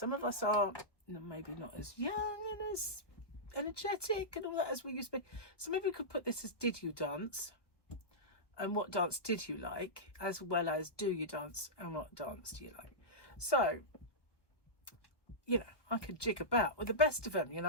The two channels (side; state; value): right; late; 1.2 ms